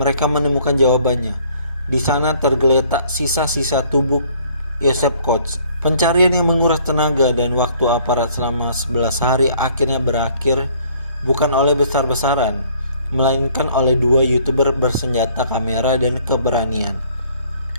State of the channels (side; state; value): both; inverted; correlation -0.59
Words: menemukan jawabannya. Di sana tergeletak sisa-sisa tubuh Joseph Koch. Pencarian yang menguras tenaga dan waktu aparat selama 11 hari akhirnya berakhir bukan oleh besar-besaran, melainkan oleh 2 YouTuber bersenjata kamera dan keberanian.